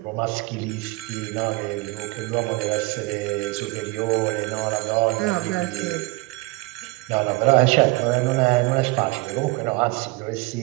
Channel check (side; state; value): left; quieter; 24.0 dB